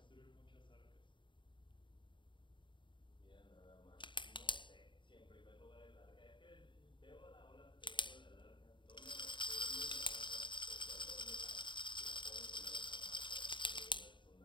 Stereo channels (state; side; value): late; right; 0.23 ms